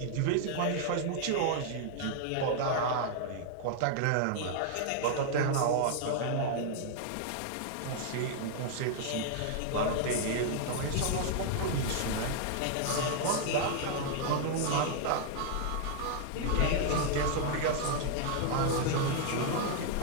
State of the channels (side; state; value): both; different; correlation -0.01